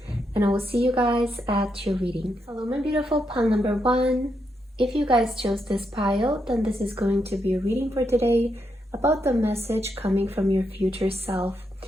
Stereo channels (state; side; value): normal; both; correlation 0.81